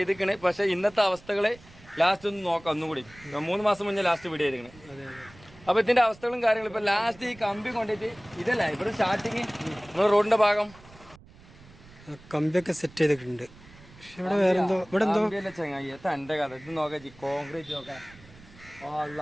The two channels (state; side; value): noise; right; rumble, 23 dB below the sound